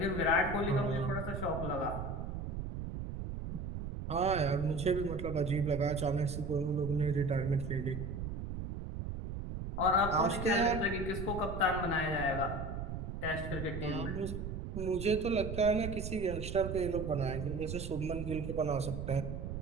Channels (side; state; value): right; noise; rumble, 5 dB below the sound